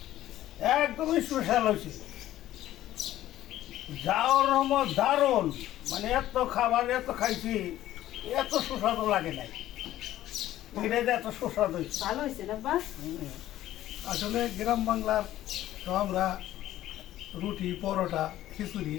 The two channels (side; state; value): right; quieter; 13.8 dB